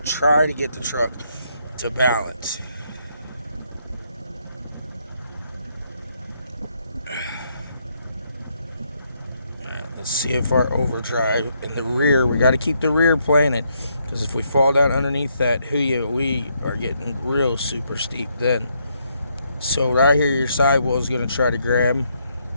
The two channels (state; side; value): inverted; both; correlation -0.75